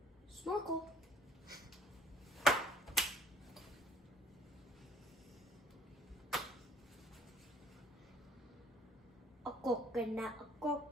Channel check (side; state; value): both; normal; correlation 0.55